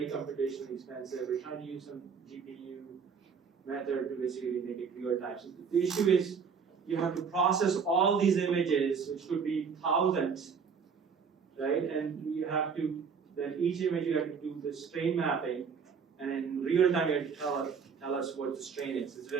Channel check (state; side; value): quieter; left; 6.1 dB